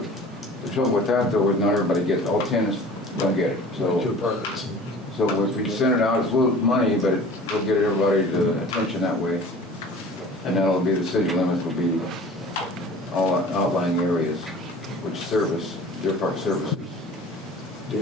the trouble with that though is not everybody gets, all 10 don't get it. So if we send it out, it's a little money, but we'll get everybody to attention that way. And that'll be the city limits will be all outlying areas which service Deer Park services.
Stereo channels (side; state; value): both; normal; correlation 0.44